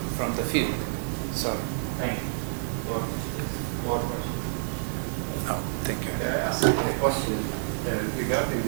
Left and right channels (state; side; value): silent; left; digital silence